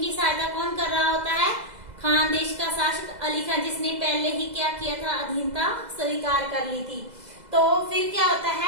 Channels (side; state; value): left; late; 2.0 ms